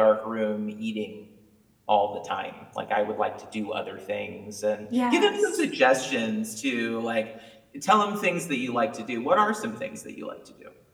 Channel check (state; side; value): identical; both; correlation 1.00